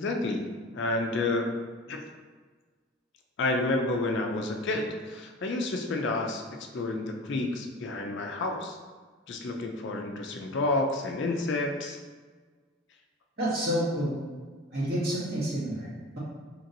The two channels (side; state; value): both; normal; correlation 0.35